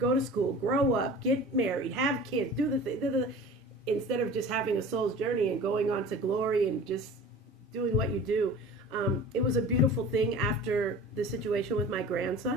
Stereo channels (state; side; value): normal; both; correlation 0.40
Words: to school, grow up, get married, have kids, do the thing, instead of just having a soul's journey and going on to glory and just doing what you do. It was a beautiful thing after the situation with my